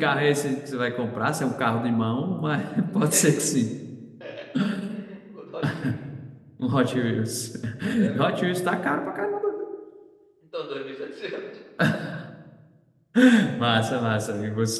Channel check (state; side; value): identical; both; correlation 1.00